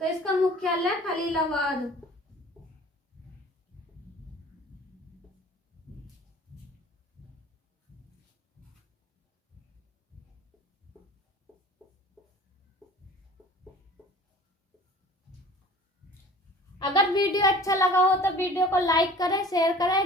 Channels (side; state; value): both; normal; correlation 0.46